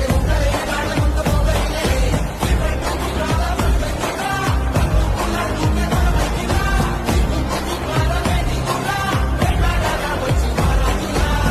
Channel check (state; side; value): identical; both; correlation 1.00